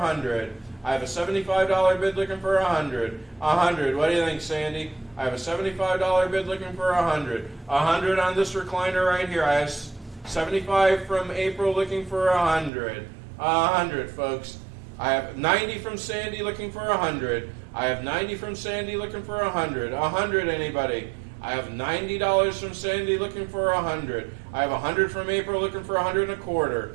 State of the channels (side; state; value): left; drops out; at 12.7 s